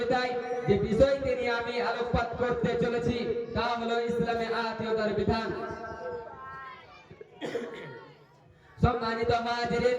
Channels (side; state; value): both; identical; correlation 1.00